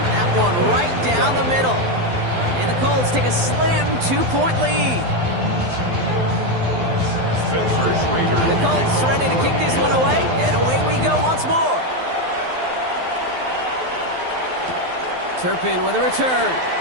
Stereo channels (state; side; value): late; left; 12 ms